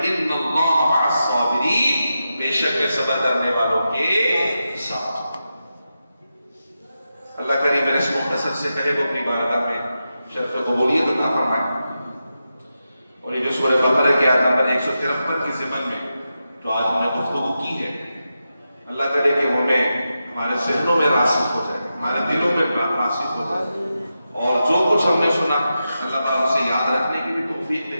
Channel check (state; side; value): inverted; both; correlation -0.89